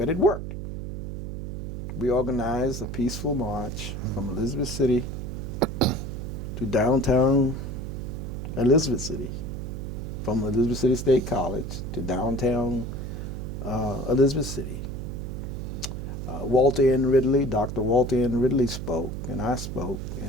it worked. We organized a peaceful march from Elizabeth City to downtown Elizabeth City, from Elizabeth City State College to downtown Elizabeth City. Walter N. Ridley, Dr. Walter N. Ridley spoke, and I spoke,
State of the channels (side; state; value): right; noise; hum, 6 dB below the sound